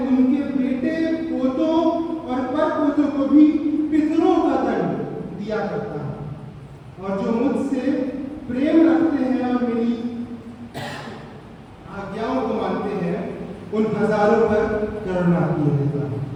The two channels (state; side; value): identical; both; correlation 1.00